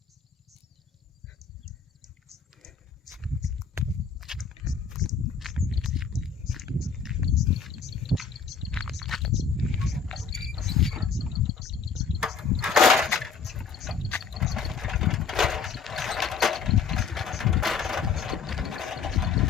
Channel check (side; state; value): right; quieter; 5.9 dB